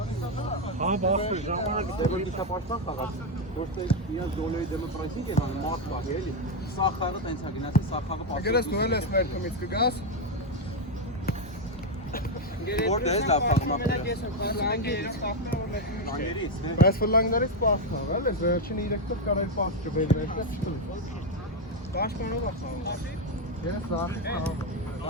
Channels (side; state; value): both; normal; correlation 0.06